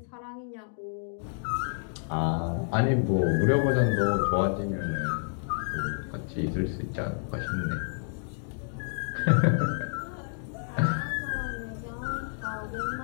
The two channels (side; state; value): right; silent; digital silence